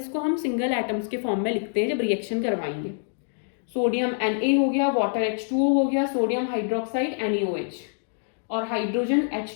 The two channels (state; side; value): silent; right; digital silence